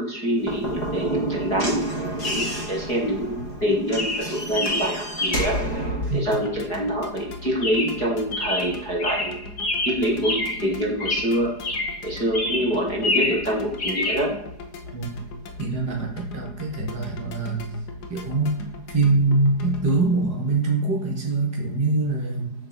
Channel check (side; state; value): right; late; 4.8 ms